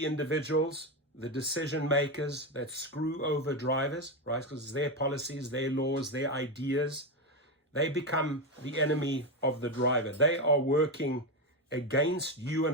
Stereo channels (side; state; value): both; normal; correlation 0.12